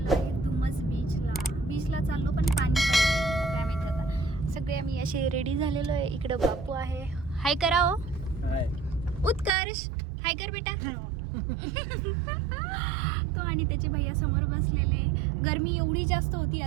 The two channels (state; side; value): drops out; left; at 9.5 s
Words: आहे दुमस बीचला चाललो, पण पाणी पाहिजे काय माहिती आता. सगळे आम्ही असे रेडी झालेलो आहे. इकडं बापू आहे, हाय करा हो. उत्कर्ष हाय कर बेटा. तो आणि त्याचे भैया समोर बसलेले. गरमी एवढी जास्त होती,